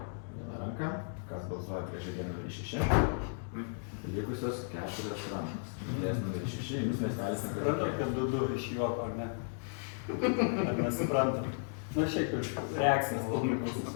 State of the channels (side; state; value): right; silent; digital silence